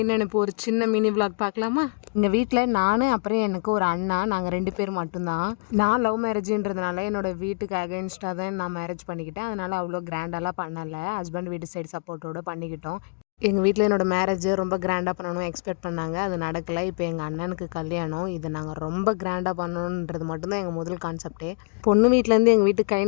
நினைப்பு ஒரு சின்ன மினி விளாக் பார்க்கலாமா? எங்கள் வீட்டில் நான் அப்புறம் எனக்கு ஒரு அண்ணா, நாங்கள் 2 பேர் மட்டும்தான். நான் லவ் மேரேஜுன்றதுனால என்னோட வீட்டுக்கு அகைன்ஸ்டாக தான் நான் மேரேஜ் பண்ணிக்கிட்டேன். அதனால் அவ்வளோ கிராண்டெல்லாம் பண்ணலை. ஹஸ்பண்ட் வீட்டு சைடு சப்போர்ட்டோடு பண்ணிக்கிட்டோம். எங்கள் வீட்டில் என்னோடய மேரேஜ் ரொம்ப கிராண்டாக பண்ணணும் எக்ஸ்பெக்ட் பண்ணாங்க. அது நடக்கலை. இப்போ எங்கள் அண்ணனுக்கு கல்யாணம். இது நாங்கள் ரொம்ப கிராண்டாக பண்ணணுன்றது மட்டும்தான் எங்கள் முதல் கான்செப்டே. பொண்ணு வீட்டிலேருந்து எங்கள் வீட்டுக்கு கை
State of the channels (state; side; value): quieter; right; 34.7 dB